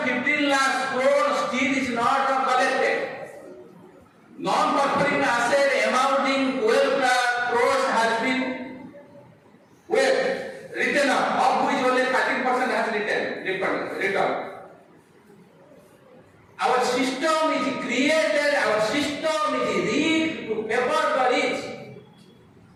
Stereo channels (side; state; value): both; identical; correlation 1.00